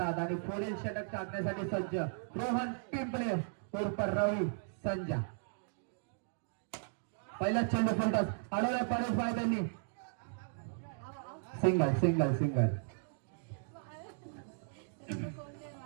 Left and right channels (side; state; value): left; silent; digital silence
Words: आणि पुढील षटक टाकण्यासाठी सज्ज रोहन पिंपळे उर्फ रवी संजा. पहिला चेंडू फुलटॉस अडवला परेश भाई त्यांनी सिंगल सिंगल सिंगल.